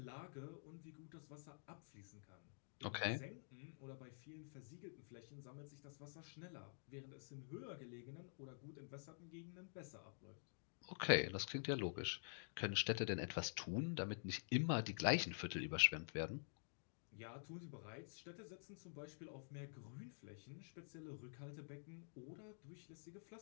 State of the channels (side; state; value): right; silent; digital silence